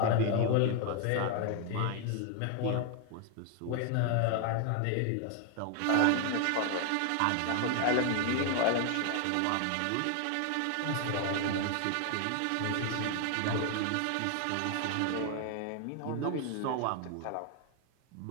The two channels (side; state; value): both; different; correlation 0.01